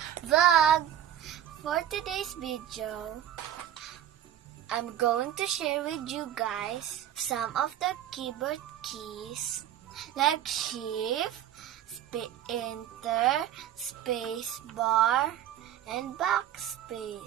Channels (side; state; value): left; quieter; 11.0 dB